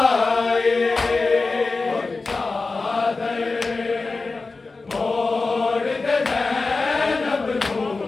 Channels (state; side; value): quieter; right; 3.8 dB